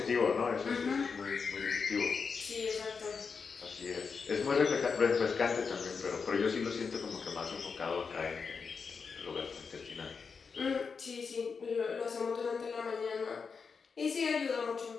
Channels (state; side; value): quieter; right; 5.4 dB